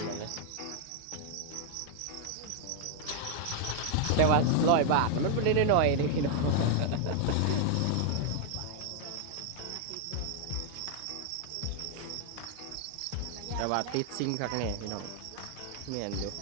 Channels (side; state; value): both; different; correlation 0.00